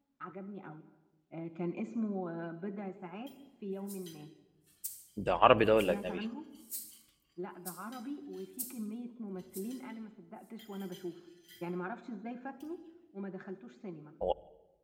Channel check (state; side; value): identical; both; correlation 1.00